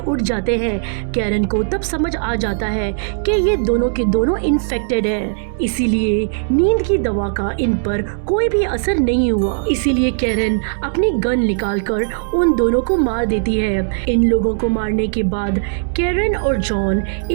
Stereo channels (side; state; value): left; silent; 67 dB below the other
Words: जाते हैं। कैरन को तब समझ आ जाता है कि ये दोनों के दोनों इन्फेक्टेड है, इसीलिए नींद की दवा का इन पर कोई भी असर नहीं हुआ। इसीलिए कैरन अपनी गन निकालकर उन दोनों को मार देती है। इन लोगों को मारने के बाद कैरन और जॉन